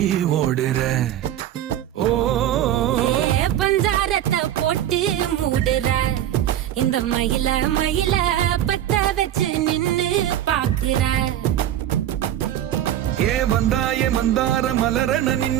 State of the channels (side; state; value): left; quieter; 11.7 dB